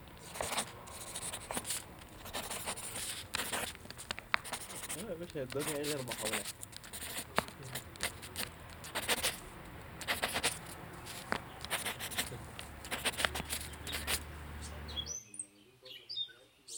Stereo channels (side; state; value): both; identical; correlation 1.00